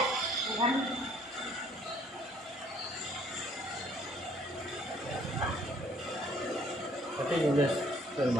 Bukan. Tapi nulis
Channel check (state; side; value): normal; both; correlation 0.61